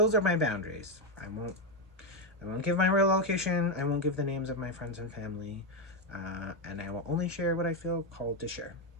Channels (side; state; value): both; normal; correlation 0.07